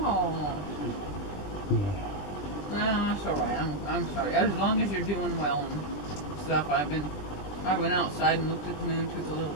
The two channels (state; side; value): late; right; 20 ms